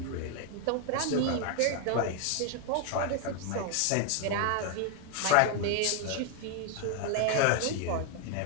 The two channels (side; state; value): both; different; correlation 0.01